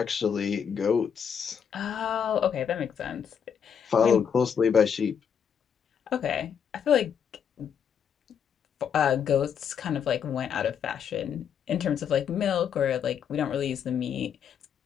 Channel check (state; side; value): quieter; right; 7.7 dB